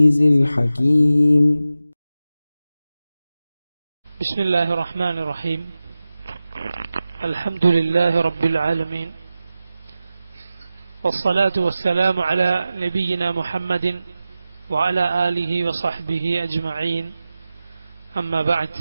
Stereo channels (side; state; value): both; inverted; correlation -0.94